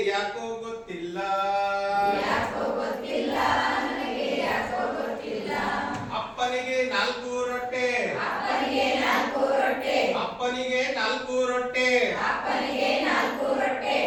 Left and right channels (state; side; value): identical; both; correlation 1.00